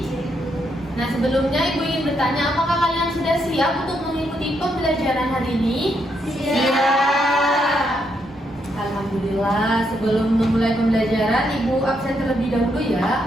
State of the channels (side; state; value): both; normal; correlation 0.78